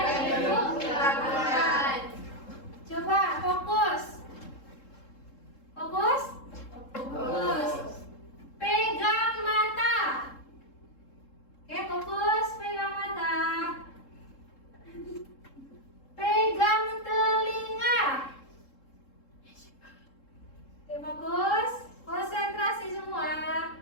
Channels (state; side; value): late; right; 3.7 ms